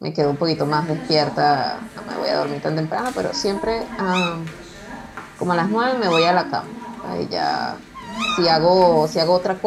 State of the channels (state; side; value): identical; both; correlation 1.00